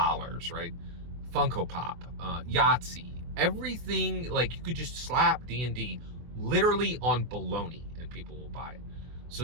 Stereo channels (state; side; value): late; left; 24 ms